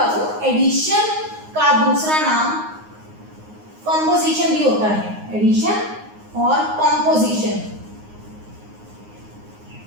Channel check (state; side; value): late; left; 9.6 ms